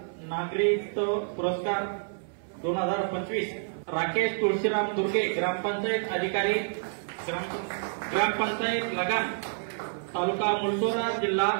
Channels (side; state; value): left; silent; 59 dB below the other